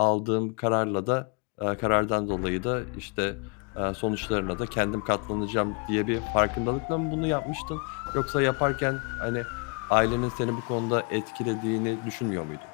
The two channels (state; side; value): quieter; right; 34.1 dB